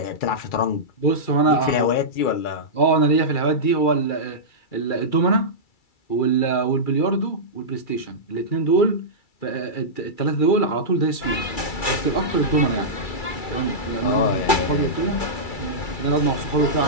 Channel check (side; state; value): right; late; 2.3 ms